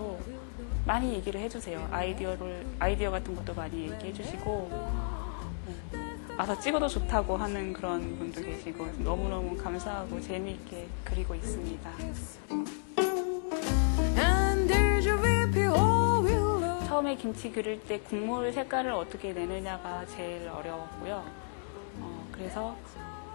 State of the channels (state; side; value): silent; right; digital silence